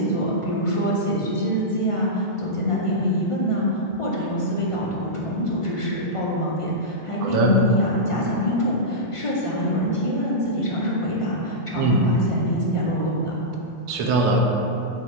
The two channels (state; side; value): late; right; 1.5 ms